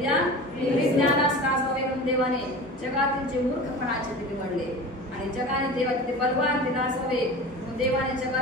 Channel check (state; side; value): normal; both; correlation 0.34